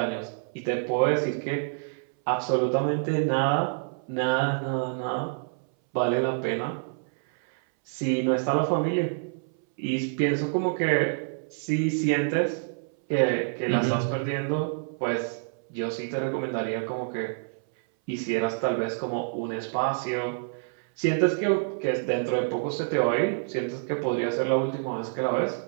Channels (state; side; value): silent; left; 60 dB below the other